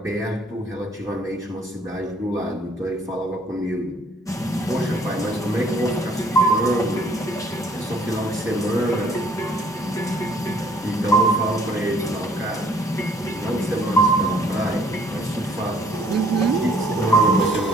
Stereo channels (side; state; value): both; normal; correlation 0.60